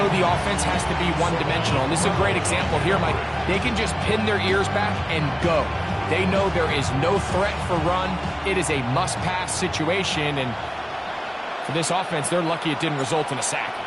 the offense has to be one-dimensional. And this is a great example here, Mike. They can just pin their ears back and go. They know there is no threat for run. It is a must-pass situation, and for this offense, they're lucky it didn't result in a sack.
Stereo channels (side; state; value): both; identical; correlation 1.00